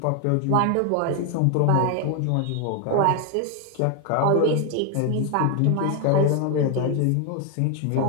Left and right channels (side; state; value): both; different; correlation 0.01